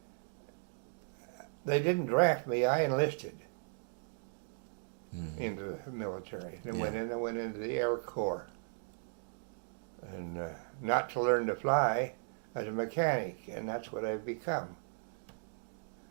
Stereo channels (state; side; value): silent; left; digital silence